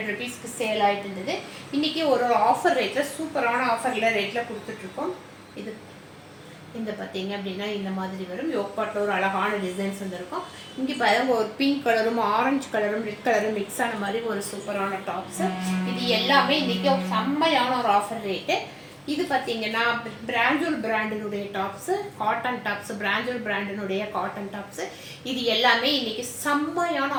ருபீஸ்க்கு சேல் ஆகிட்டு இருந்தது. இன்றைக்கி ஒரு ஆஃபர் ரேட்டில் சூப்பரான ஆஃபரில் ரேட்டில் கொடுத்துட்ருக்கோம். இது இந்த பார்த்தீங்க அப்படின்னா இந்த மாதிரி வரும். யோக்பாட்டில் ஒரு அழகான டிசைன்ஸ் வந்துருக்கும். இங்கே பாருங்க, ஒரு பிங்க் கலரும் ஆரஞ்சு கலரும் ரெட் கலரும் மிக்ஸ் ஆன மாதிரி ஒரு சூப்பரான டாப்ஸு. இது எல்லாமே இன்றைக்கி செம்மையான ஒரு ஆஃபர் ரேட்டு. இது பார்த்தீங்கன்னா பிராண்டூர் பிராண்டினுடைய டாப்ஸு, காட்டன் டாப்ஸு, பிராண்டூர் பிராண்டினுடைய காட்டன் டாப்ஸு. இது எல்லாமே இன்னைக்கு செம்மையான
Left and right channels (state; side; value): identical; both; correlation 1.00